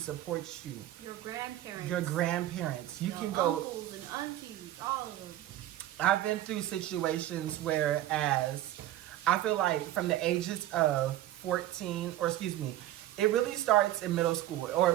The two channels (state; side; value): quieter; left; 13.8 dB